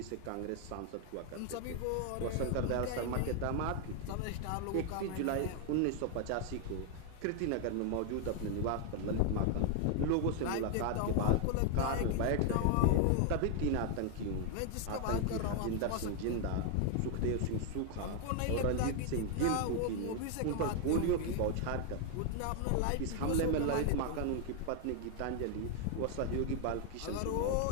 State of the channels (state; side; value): different; both; correlation 0.00